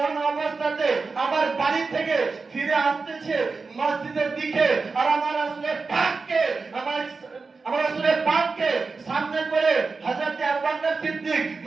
অবস্থাতে আমার বাড়ি থেকে ফিরে আসতেছে মসজিদের দিকে, আর আমার রাসূলের পাককে আমার রাসূলের পাককে সামনে করে হযরত আবু বকর সিদ্দিক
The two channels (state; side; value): quieter; left; 4.3 dB